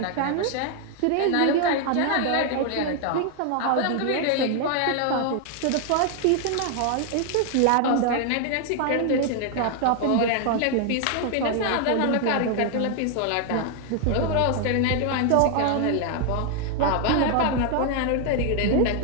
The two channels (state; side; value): different; both; correlation 0.00